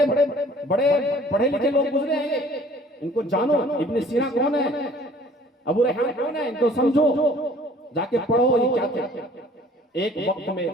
पढ़े लिखे लोग गुजरे हैं, इनको जानो। इब्न सीना कौन है, अबू रैहान कौन है, इनको समझो, जाके पढ़ो ये क्या थे। एक वक्त में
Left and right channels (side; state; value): both; normal; correlation 0.53